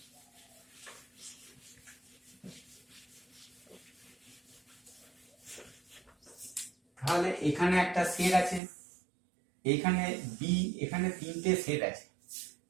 তাহলে এখানে একটা সেট আছে, এখানে বি, এখানে তিনটে সেট আছে,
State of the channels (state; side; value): drops out; left; at 8.6 s